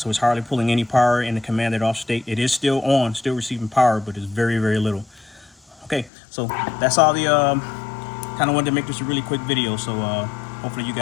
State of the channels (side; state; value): right; drops out; at 6.1 s